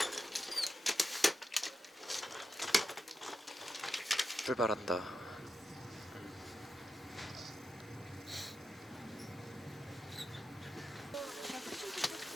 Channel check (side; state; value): both; normal; correlation 0.89